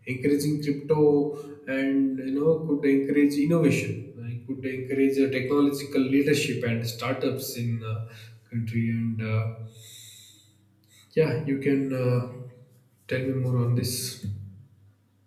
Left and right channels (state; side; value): identical; both; correlation 1.00